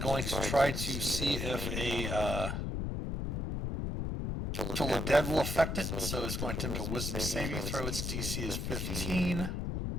to try to see if a Till the Dead will affect it. So it's going to attempt a wisdom saving throw. Its DC is 15.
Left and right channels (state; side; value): noise; left; rumble, 1 dB below the sound